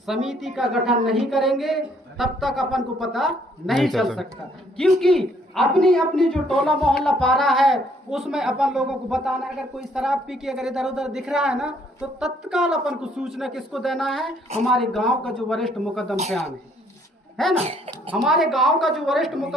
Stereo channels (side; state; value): both; normal; correlation 0.65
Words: समिति का गठन नहीं करेंगे तब तक अपन को पता नहीं चल सकता, क्योंकि अपनी अपनी जो टोला मोहल्ला पारा है उसमें अपन लोगों को बताना है। अगर कोई शराब पी के अगर इधर उधर दिख रहा है ना तो तत्काल अपन को सूचना किसको देना है? हमारे गांव का जो वरिष्ठ मुकद्दम सियान है ना, हमारे गांव का जो वरिष्ठ